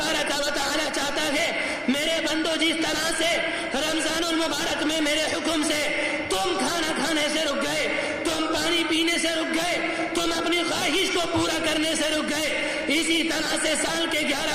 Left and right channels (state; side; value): identical; both; correlation 1.00